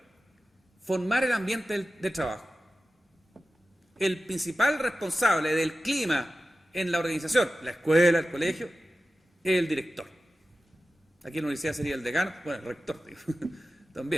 formar el ambiente de trabajo. El principal responsable del clima en la organización, la escuela, el colegio, es el director. Aquí en la universidad sería el decano, bueno, el rector, digo,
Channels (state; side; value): normal; both; correlation 0.94